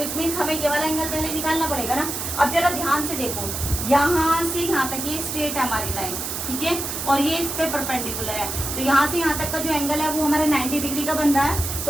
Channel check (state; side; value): noise; right; hiss, 4 dB below the sound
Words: मीन्स हमें ये वाला एंगल पहले निकालना पड़ेगा ना। अब जरा ध्यान से देखो, यहाँ से यहाँ तक ये स्ट्रेट है हमारी लाइन, ठीक है, और ये इस पे परपेंडिकुलर है। तो यहाँ से यहाँ तक का जो एंगल है वो हमारा 90 डिग्री का बन रहा है।